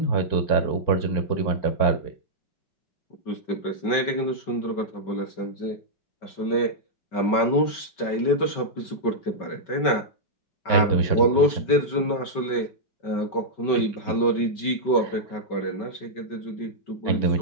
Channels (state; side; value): late; right; 5.2 ms